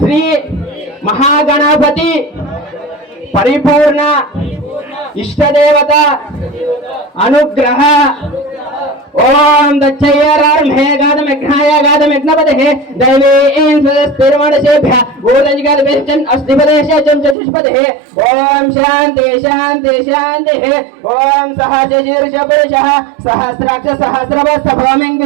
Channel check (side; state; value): left; drops out; at 17.4 s